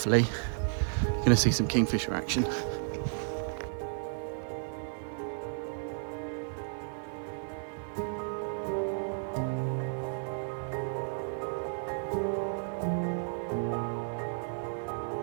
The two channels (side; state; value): left; silent; digital silence